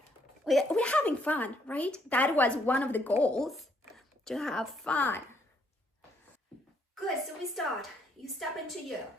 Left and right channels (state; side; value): normal; both; correlation 0.70